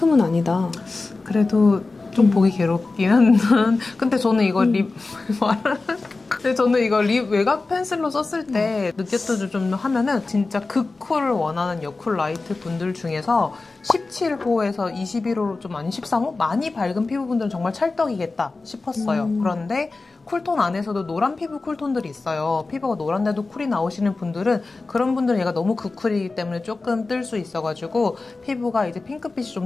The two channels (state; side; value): quieter; right; 3.6 dB